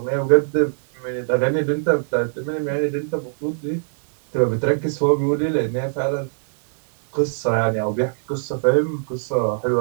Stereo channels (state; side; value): silent; left; 65 dB below the other